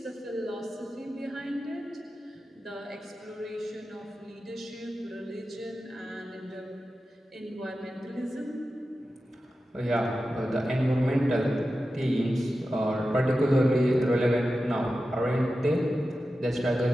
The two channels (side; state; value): both; normal; correlation 0.92